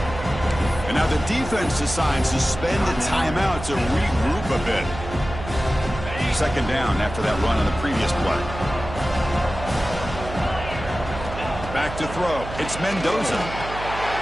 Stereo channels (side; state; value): right; noise; hum, 10 dB below the sound